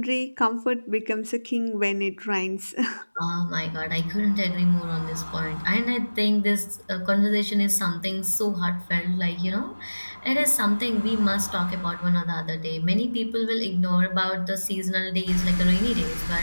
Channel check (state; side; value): inverted; both; correlation -1.00